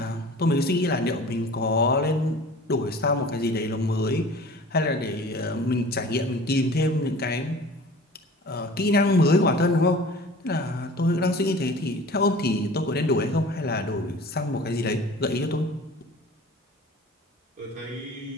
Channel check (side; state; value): both; normal; correlation 0.43